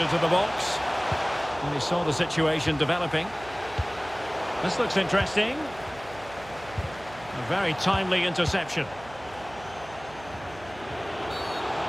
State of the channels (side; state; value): right; noise; hum, 19 dB below the sound